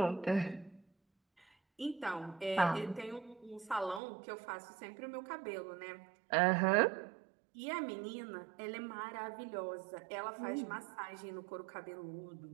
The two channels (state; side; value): drops out; left; at 4.0 s